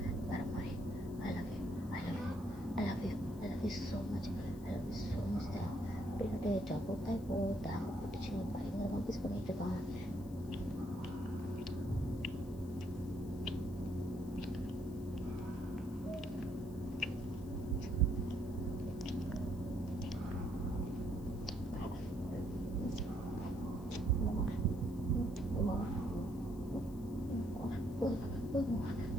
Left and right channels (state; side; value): noise; left; hiss, 23 dB below the sound